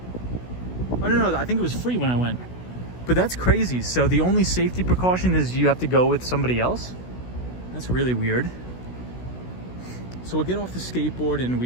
Oh no, I think it was free when I went. But that's crazy. So the only safety precaution is you have to go with somebody else? That's really weird. So we'll get off the skateboard and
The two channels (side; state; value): right; late; 16 ms